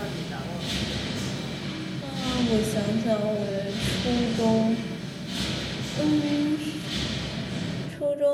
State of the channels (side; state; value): both; identical; correlation 1.00